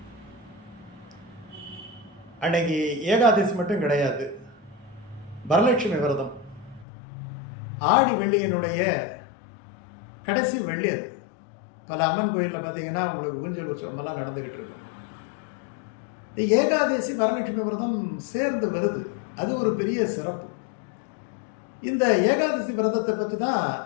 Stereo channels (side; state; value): right; drops out; at 6.9 s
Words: அன்னைக்கு ஏகாதசி மட்டும் கிடையாது, வரலட்சுமி விரதம். ஆடி வெள்ளியினுடைய கடைசி வெள்ளி அது. பல அம்மன் கோயிலில் பார்த்தீங்கன்னா அவங்களுக்கு ஊஞ்சல் உற்சவமெல்லாம் நடந்துக்கிட்டு இருக்கும். ஏகாதசி வரலட்சுமி விரதம் சேர்ந்து வருது, அது ஒரு பெரிய சிறப்பு. இந்த ஏகாதசி விரதத்தை பற்றி தான்